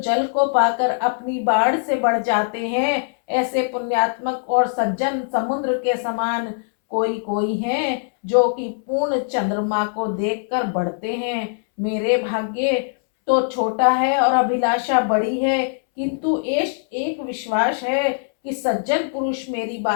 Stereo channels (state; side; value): silent; right; 65 dB below the other